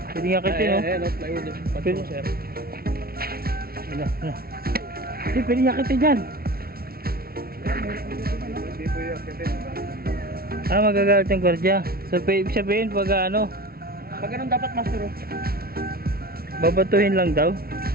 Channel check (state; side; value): late; left; 0.44 ms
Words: Pwede nga kitin oh. Eh, no, plywood. Pwede. Sir. Ano. Hindi, pwede nga kitin yan. Hindi po yung kitin. Ah, magagalit yung gwardiya. So, ibig sabihin pag ano, Pag ganun dapat master oh. babatuhin lang daw.